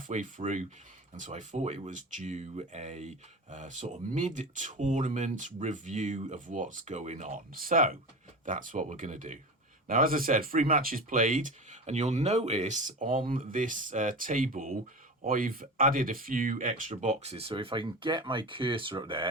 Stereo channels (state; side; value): normal; both; correlation 0.28